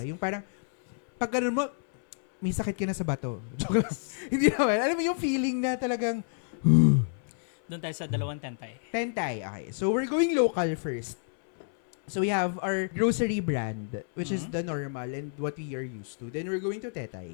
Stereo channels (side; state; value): right; silent; 58 dB below the other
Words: Yes. Yung parang, pag ganun mo, may sakit ka na sa bato. Joke lang. Hindi naman. Alam mo yung feeling na talagang, Doon tayo sa dalawang tentay. tentay. Okay, so we're going local first. So we have our grocery brand, which is Mhm. the normal and what we are used to. Then we're going to